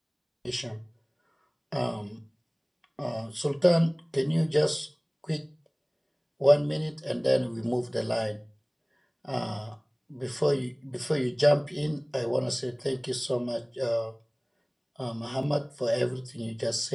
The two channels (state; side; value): identical; both; correlation 1.00